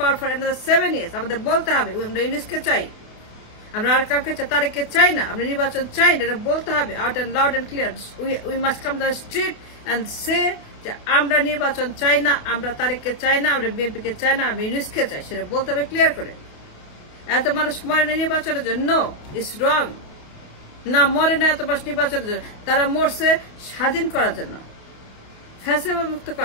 for another 7 years. আমাদের বলতে হবে আমরা ইউনুসকে চাই, আমরা আর কাউকে তারেককে চাই না, আমরা নির্বাচন চাই না, এটা বলতে হবে out and loud and clear. We must come to the street and say যে আমরা নির্বাচন চাই না, আমরা তারেককে চাই না, আমরা বিএনপিকে চাই না, আমরা ইউনুসকে চাই, সেটা বলতে হবে ক্লিয়ার করে। এত মানুষ মরে নির্বাচনের জন্য, ইটস রং। না মরে না এত মানুষ নির্বাচনের জন্য, তারা মরছে স্বাধীন করার জন্য, ফ্যাসিবাদ মুক্ত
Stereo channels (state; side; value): late; right; 28 ms